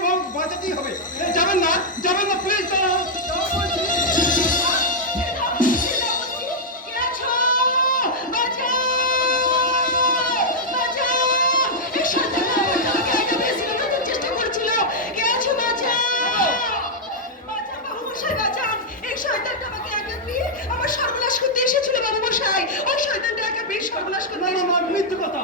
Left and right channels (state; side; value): normal; both; correlation -0.05